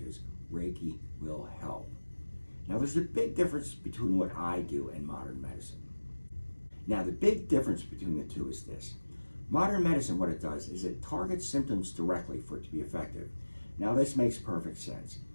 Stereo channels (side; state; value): both; inverted; correlation -1.00